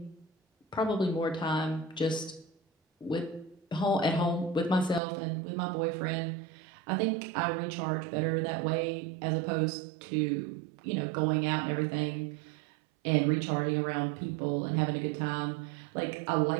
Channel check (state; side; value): drops out; left; at 5.0 s